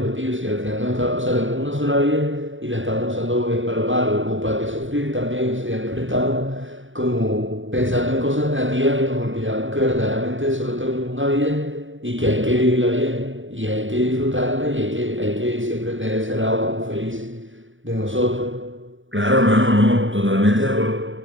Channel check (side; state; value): left; late; 0.56 ms